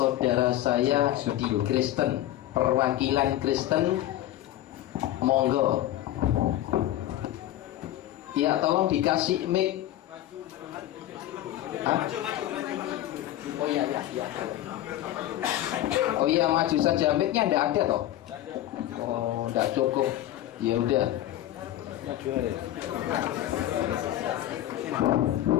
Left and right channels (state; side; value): quieter; right; 13.5 dB